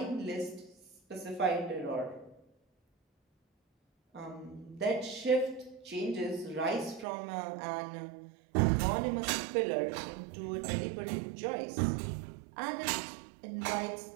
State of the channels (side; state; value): left; drops out; at 7.1 s